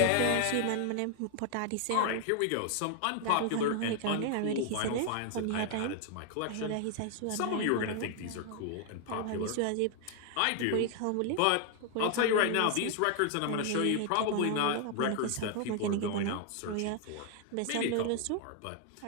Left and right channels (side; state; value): both; different; correlation 0.00